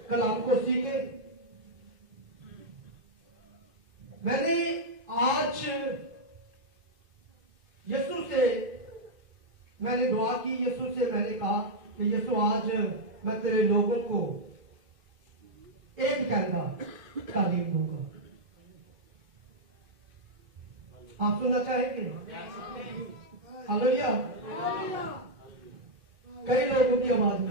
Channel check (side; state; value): left; late; 2.6 ms